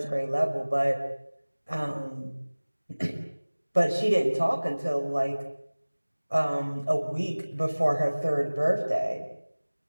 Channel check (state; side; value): inverted; both; correlation -1.00